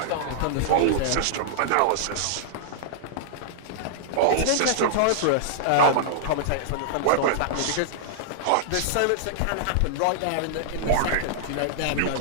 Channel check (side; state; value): both; different; correlation -0.01